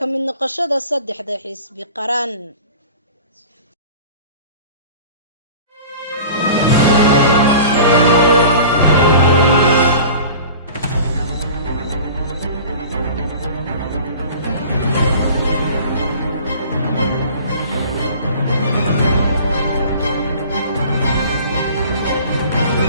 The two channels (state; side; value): inverted; both; correlation -0.42